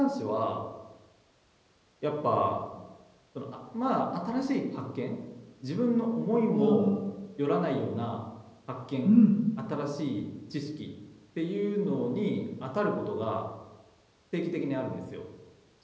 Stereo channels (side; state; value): both; identical; correlation 1.00